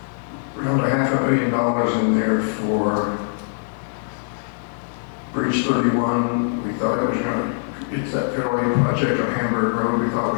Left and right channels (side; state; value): right; silent; digital silence